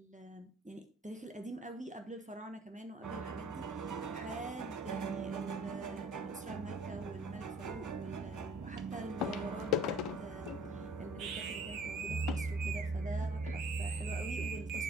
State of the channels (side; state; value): both; normal; correlation 0.53